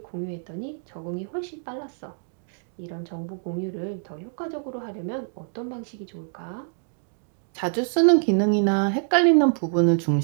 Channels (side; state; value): left; silent; digital silence